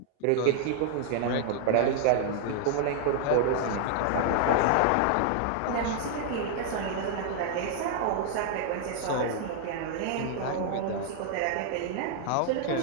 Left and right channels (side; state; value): both; different; correlation 0.00